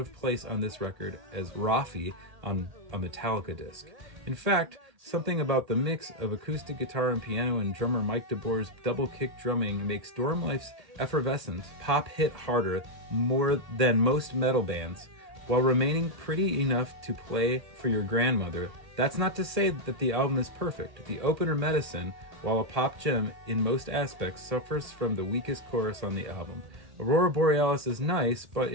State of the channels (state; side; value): late; left; 1.8 ms